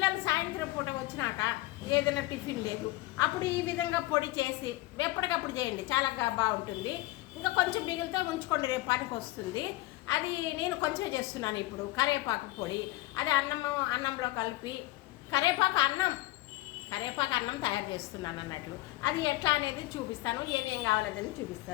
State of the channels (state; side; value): quieter; right; 18.5 dB